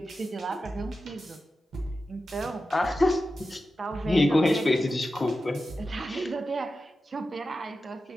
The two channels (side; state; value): both; normal; correlation 0.92